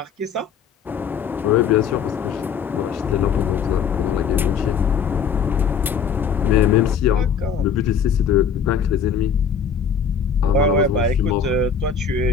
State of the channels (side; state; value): right; quieter; 6.6 dB